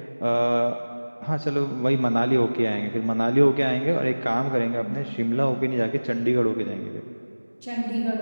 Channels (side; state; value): both; inverted; correlation -1.00